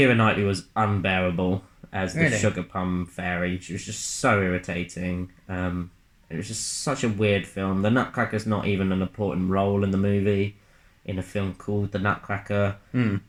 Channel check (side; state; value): both; identical; correlation 1.00